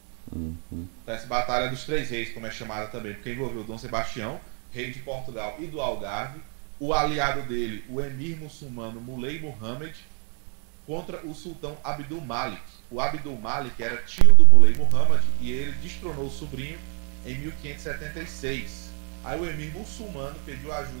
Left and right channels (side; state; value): left; quieter; 39.3 dB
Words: Então, essa Batalha dos Três Reis, como é chamada também, porque envolveu Dom Sebastião, rei de Portugal e do Algarve, o aliado dele, o emir muçulmano Muley Muhammad, contra o sultão Abdul Malik. O Abdul Malik era tio do Muley Muhammad e ele destronou o sobrinho em 1576. Aí o emir muçulmano pediu